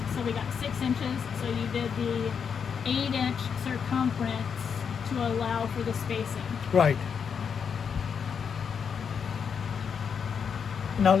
so we got 6 inches. So you did the 8-inch circumference to allow for the spacing. Right. Now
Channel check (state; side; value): quieter; right; 6.8 dB